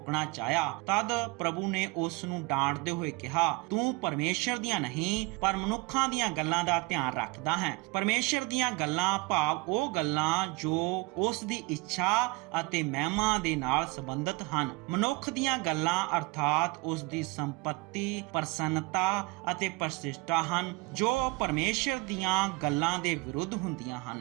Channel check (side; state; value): left; quieter; 25.0 dB